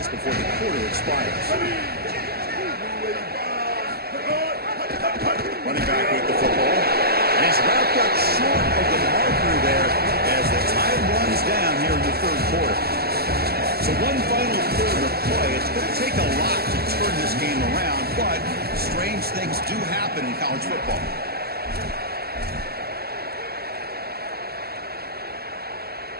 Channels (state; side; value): late; left; 0.46 ms